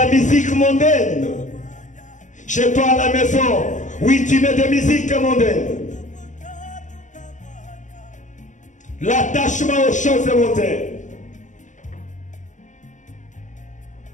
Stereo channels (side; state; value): right; late; 0.36 ms